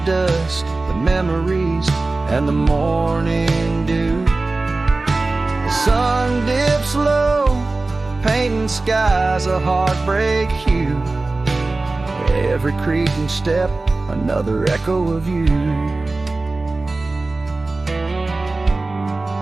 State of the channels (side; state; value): left; quieter; 3.3 dB